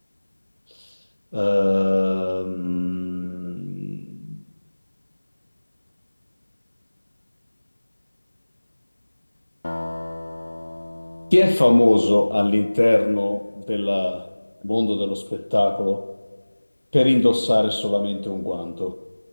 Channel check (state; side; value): inverted; both; correlation -1.00